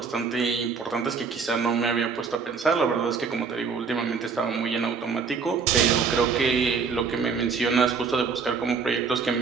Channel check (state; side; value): quieter; left; 5.4 dB